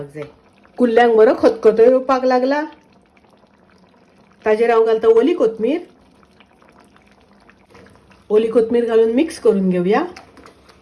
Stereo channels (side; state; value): both; identical; correlation 1.00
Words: जाय। कुल्ल्यांक बरो खतखतो येवपाक लागला। ताजेर हांव घालता ओली कोथमीर। ओली कोथमीर घालून मिक्स करून घेवया।